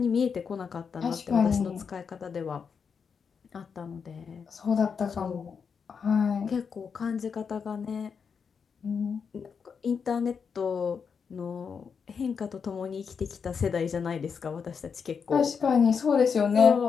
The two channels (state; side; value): quieter; right; 6.2 dB